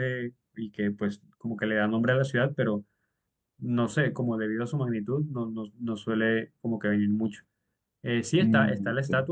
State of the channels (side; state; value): both; identical; correlation 1.00